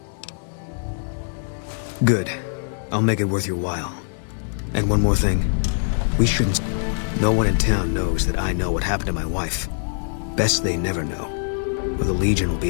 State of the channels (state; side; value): silent; right; 63 dB below the other